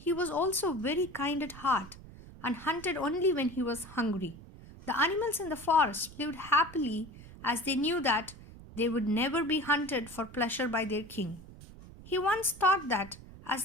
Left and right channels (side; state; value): right; noise; rumble, 17 dB below the sound